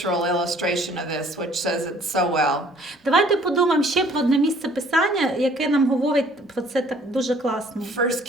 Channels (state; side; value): normal; both; correlation 0.57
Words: illustration of this, which says it so well. Давайте подумаємо ще про одне місце Писання, яке нам говорить про це так дуже класно. 1